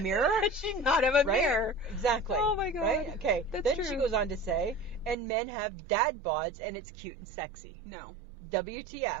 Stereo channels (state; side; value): drops out; left; at 5.2 s